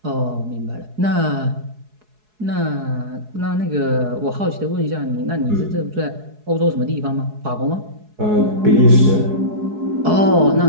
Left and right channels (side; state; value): left; late; 4.7 ms